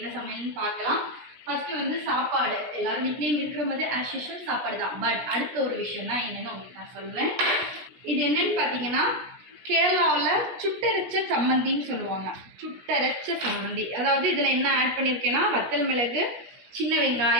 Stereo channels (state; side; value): late; left; 17 ms